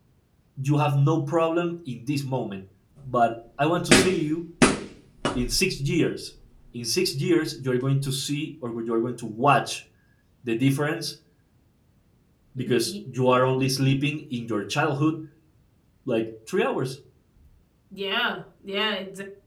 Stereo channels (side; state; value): both; identical; correlation 1.00